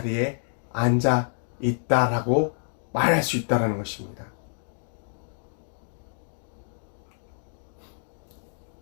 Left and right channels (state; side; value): silent; right; 59 dB below the other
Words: 앉아 있다라고 말할 수 있다는 것입니다.